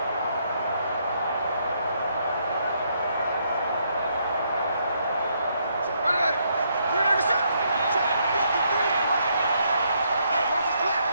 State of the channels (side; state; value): both; inverted; correlation -0.74